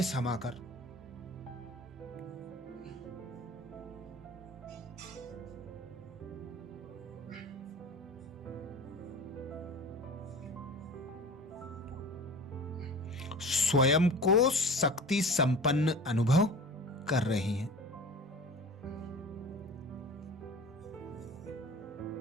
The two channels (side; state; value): both; normal; correlation 0.38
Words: समाकर स्वयं को शक्ति संपन्न अनुभव कर रही हैं।